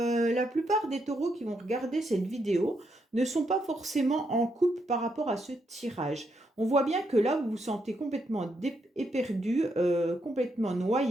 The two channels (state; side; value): normal; both; correlation 0.79